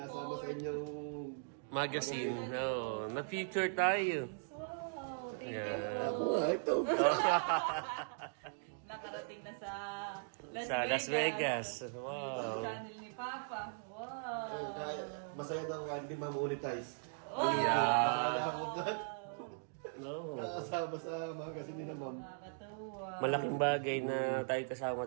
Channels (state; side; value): silent; left; digital silence